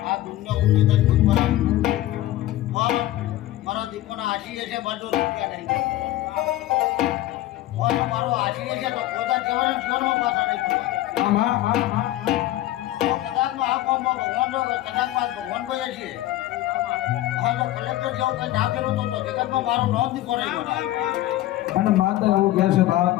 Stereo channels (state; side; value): quieter; right; 15.0 dB